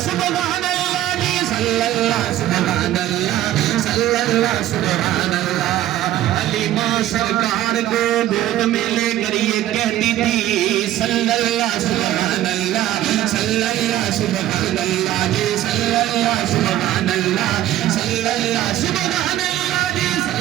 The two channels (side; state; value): left; quieter; 13.4 dB